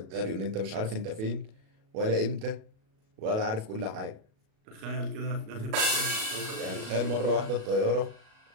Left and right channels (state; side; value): late; left; 37 ms